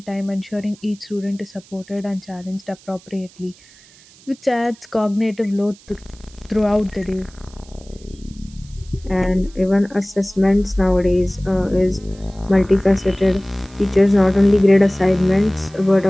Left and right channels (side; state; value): right; noise; hiss, 25 dB below the sound